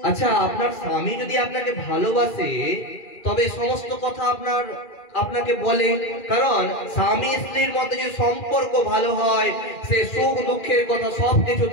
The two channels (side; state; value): right; late; 2.4 ms